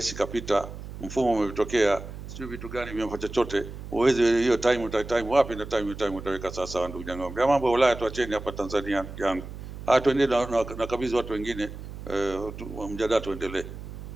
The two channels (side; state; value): right; noise; hum, 11 dB below the sound